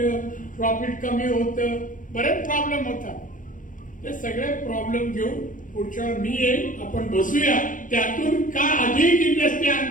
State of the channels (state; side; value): late; right; 0.38 ms